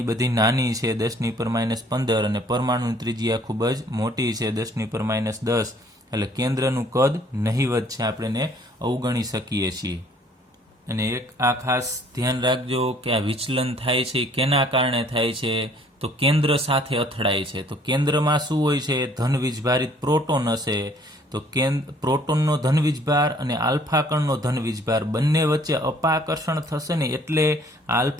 બધી નાની છે, 10⁻15, અને પરમાણુની ત્રિજ્યા ખૂબ જ મોટી છે, 10⁻10. એટલે કેન્દ્રનું કદ નહિવત છે, આપણે એને અવગણી શકીએ છીએ. અને એક આ ખાસ ધ્યાન રાખજો કે આ વિચલન થાય છે કેના કારણે થાય છે? તો કેન્દ્ર સાથે અથડાય છે. તો કેન્દ્રમાં શું હોય છે? ધન વીજભારિત પ્રોટોન હશે. તો પ્રોટોનનો ધન વીજભાર અને આલ્ફા કણનો ધન વીજભાર બંને વચ્ચે અપાકર્ષણ થશે ને, એટલે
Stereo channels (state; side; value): normal; both; correlation 0.58